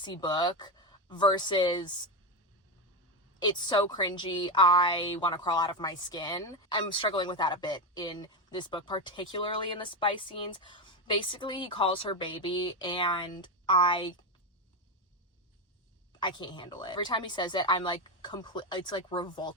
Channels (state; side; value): normal; both; correlation 0.12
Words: book versus it's so cringy, I want to crawl out of my skin. I'm struggling with that a bit in this book, particularly in the spice scenes. Basically, he calls her baby, and I can't handle it. Every time he says it, I'm like it's like